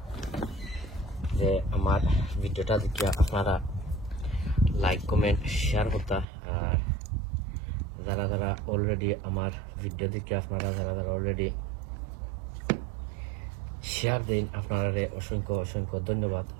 যে আমার ভিডিওটা দেখে আপনারা লাইক কমেন্ট শেয়ার করতা। আর যারা যারা অলরেডি আমার ভিডিও দেখে আপনারা যারা যারা অলরেডি শেয়ার দিন আপনারা অসংখ্য অসংখ্য ধন্যবাদ।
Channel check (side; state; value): left; drops out; at 6.2 s